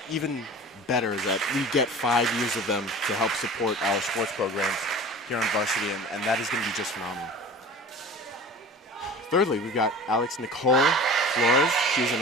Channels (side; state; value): both; normal; correlation 0.39